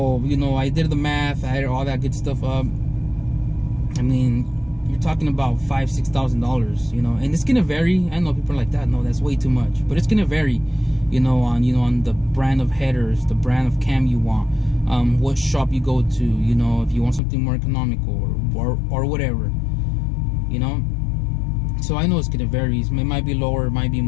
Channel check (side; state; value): right; drops out; at 17.2 s